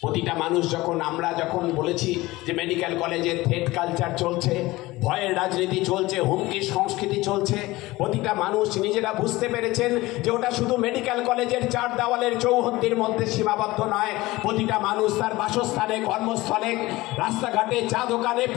প্রতিটা মানুষ আমরা যখন বলেছি যে মেডিকেল কলেজে থ্রেট কালচার চলছে, ভয়ের রাজনীতি চলছে, হুমকির সংস্কৃতি চলছে, প্রতিটা মানুষ নিজেরা বুঝতে পেরেছেন যে ওটা শুধু মেডিকেল কলেজের 4 দেওয়ালের চৌহদ্দির মধ্যে সীমাবদ্ধ নয়। প্রতিটা মানুষ তার বাসস্থানে, কর্মস্থলে, রাস্তাঘাটে, চা দোকানে,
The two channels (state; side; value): quieter; right; 19.5 dB